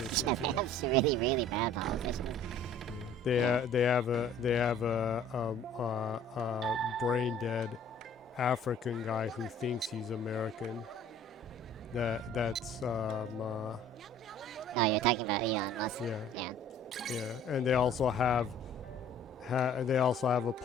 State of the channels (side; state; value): both; normal; correlation 0.51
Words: Yeah, they have some really, really bad politicians. They have a brain dead African guy who thinks he's American. That's Oh, you're talking about Elon Musk. Yeah. Yeah. Yeah, and they also have a